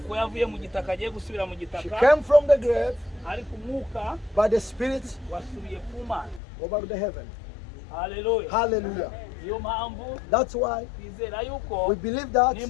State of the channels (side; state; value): right; drops out; at 6.4 s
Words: She came from the grave. By the Spirit, go back to heaven. Hallelujah. Hallelujah. That's why we believe that if